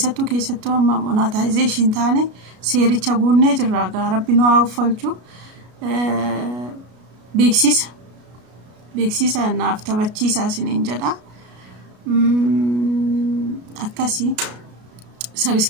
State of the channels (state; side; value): late; left; 33 ms